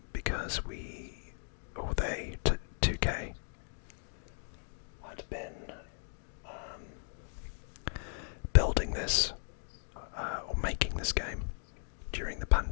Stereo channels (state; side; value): silent; right; 54 dB below the other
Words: because they, 2K, had been building this or making this game during the